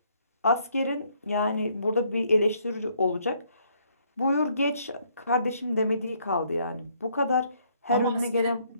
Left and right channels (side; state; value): both; inverted; correlation -0.67